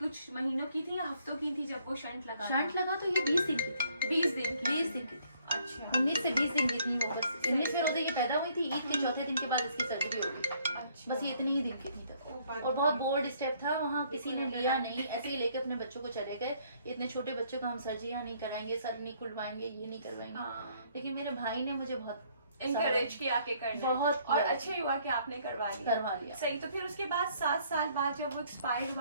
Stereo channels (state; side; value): inverted; both; correlation -0.64